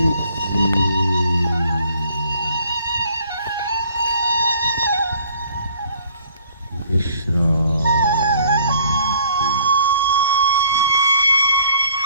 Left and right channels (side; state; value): both; inverted; correlation -0.57